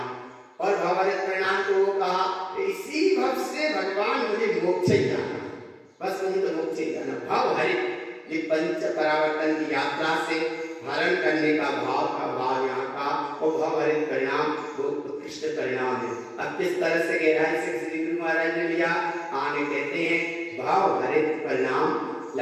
और भावहरित परिणाम को वो कहा इसी भव से भगवान मुझे मोक्ष ही जाना, बस मुझे तो मोक्ष ही जाना। भावहरित ये पंच परावर्तन की यात्रा से हरण करने का भाव यहाँ का वो भावहरित परिणाम वो उत्कृष्ट परिणाम है। अब किस तरह से गहराई से श्री गुरु महाराज ने लिया, आगे कहते हैं भावहरित परिणाम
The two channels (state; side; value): identical; both; correlation 1.00